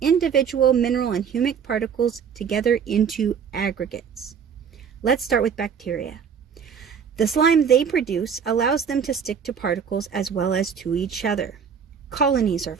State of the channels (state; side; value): quieter; left; 7.0 dB